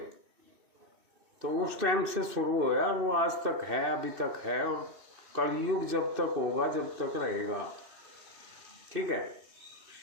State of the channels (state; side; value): late; left; 2.6 ms